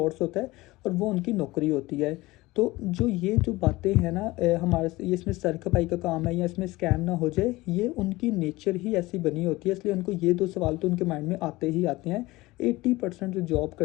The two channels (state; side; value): quieter; right; 20.1 dB